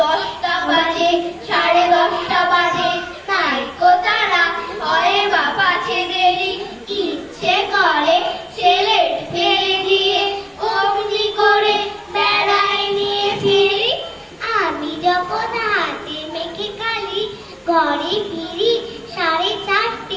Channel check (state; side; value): identical; both; correlation 1.00